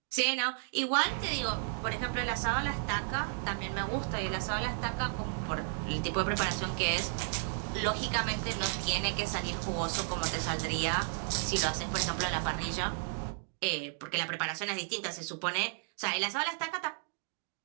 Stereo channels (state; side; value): silent; left; 55 dB below the other